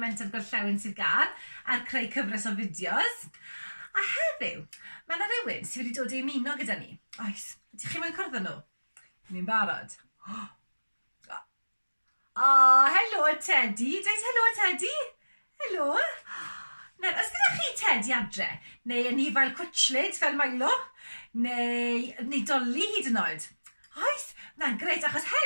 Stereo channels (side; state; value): both; inverted; correlation -1.00